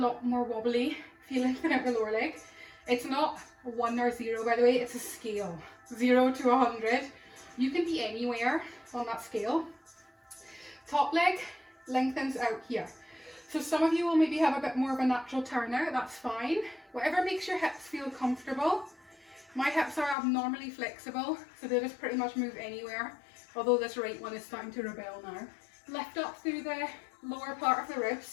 lot more wobbly if you lengthen out the lower leg. It's not 1 or 0, by the way, it's a scale. 0 to 100. You can be anywhere on that scale. Top leg lengthens out here. So some of you will maybe have a bit more of a natural turnout, that's fine. Whatever makes your hips feel comfortable. My hips are abnormally flexible, so they just pretty much move anywhere, although this right one is starting to rebel now. Lift up through the lower part of the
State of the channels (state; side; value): drops out; right; at 20.2 s